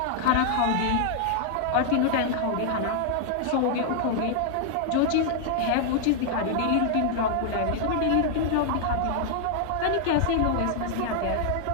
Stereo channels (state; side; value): different; both; correlation 0.00